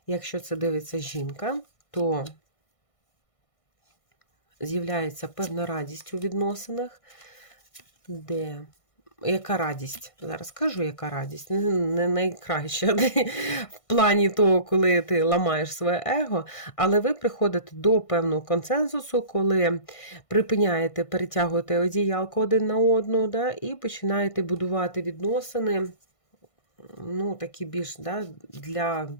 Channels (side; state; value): right; late; 1.5 ms